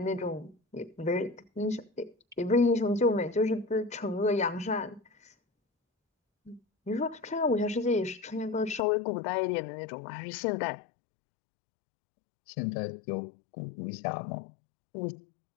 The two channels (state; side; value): drops out; right; at 8.8 s